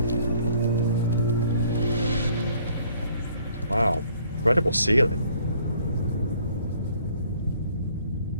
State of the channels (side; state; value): both; inverted; correlation -0.60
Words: Wow, incredible ceiling.